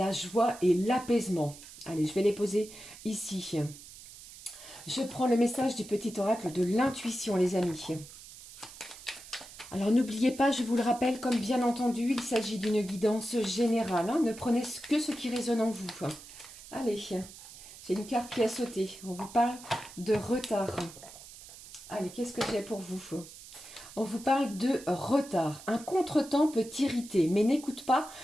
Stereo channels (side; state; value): right; noise; hiss, 17 dB below the sound